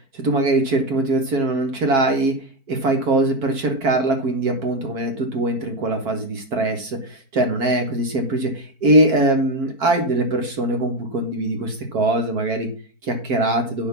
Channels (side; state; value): left; late; 4.5 ms